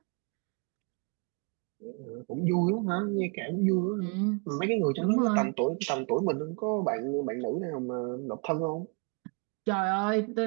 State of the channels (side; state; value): left; quieter; 34.8 dB